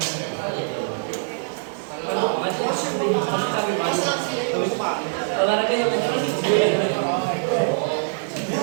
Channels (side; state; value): left; silent; digital silence